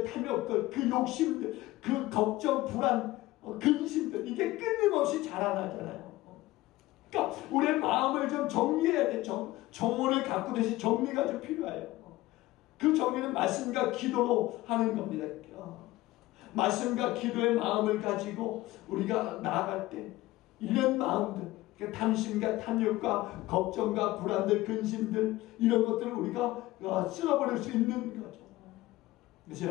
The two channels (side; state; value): right; quieter; 17.8 dB